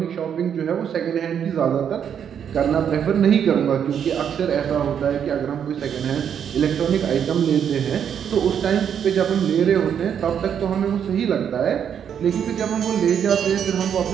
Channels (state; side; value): quieter; left; 8.3 dB